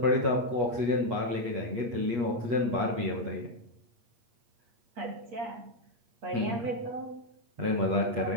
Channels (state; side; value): late; left; 8.3 ms